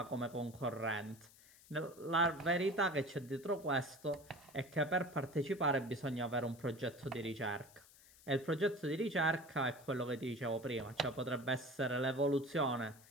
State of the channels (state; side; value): noise; left; hiss, 23 dB below the sound